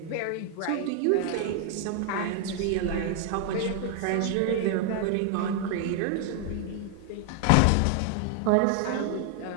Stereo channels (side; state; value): both; different; correlation 0.00